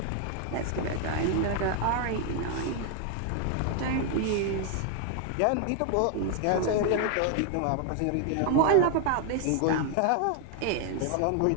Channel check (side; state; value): both; different; correlation 0.00